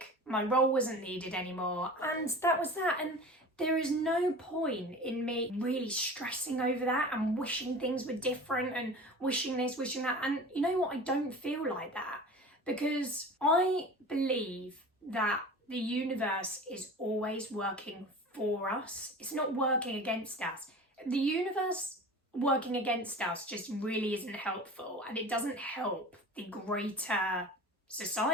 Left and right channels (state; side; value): normal; both; correlation 0.37